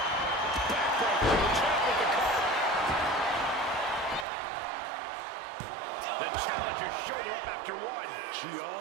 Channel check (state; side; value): drops out; left; at 4.2 s